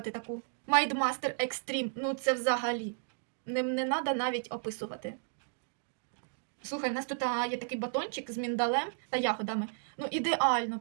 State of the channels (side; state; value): left; silent; digital silence